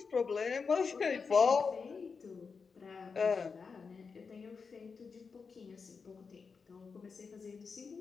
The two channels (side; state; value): right; quieter; 5.2 dB